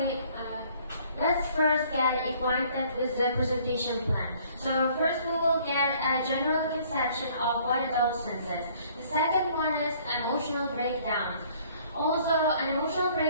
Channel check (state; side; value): inverted; both; correlation -0.58